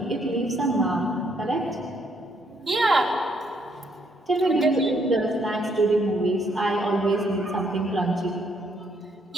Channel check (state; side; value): normal; both; correlation 0.71